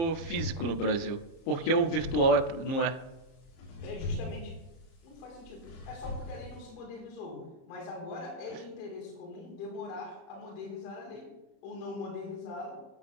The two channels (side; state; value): right; late; 30 ms